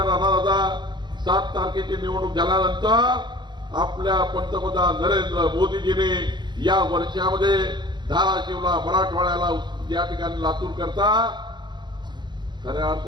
दादा, 7 तारखेची निवडणूक झाल्यानंतर आपल्या पंतप्रधान नरेंद्र मोदीजींनी या वर्षामध्ये धाराशिवला, मराठवाड्याला, या ठिकाणी लातूर करता खऱ्या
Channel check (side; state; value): left; late; 0.21 ms